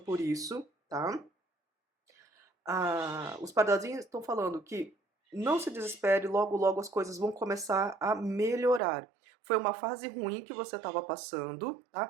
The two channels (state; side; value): drops out; left; at 8.8 s